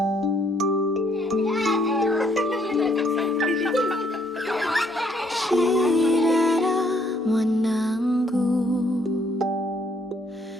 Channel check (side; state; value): both; normal; correlation 0.68